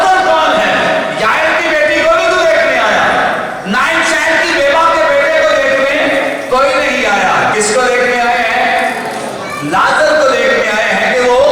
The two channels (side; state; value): both; identical; correlation 1.00